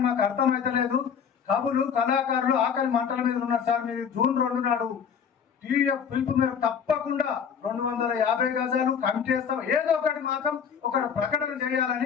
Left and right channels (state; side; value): quieter; right; 7.2 dB